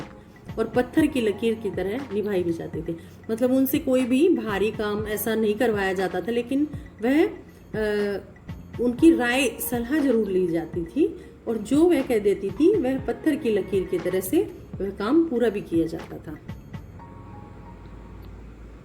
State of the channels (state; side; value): identical; both; correlation 1.00